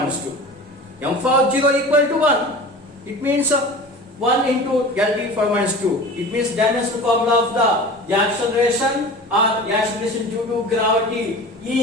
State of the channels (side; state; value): both; normal; correlation 0.36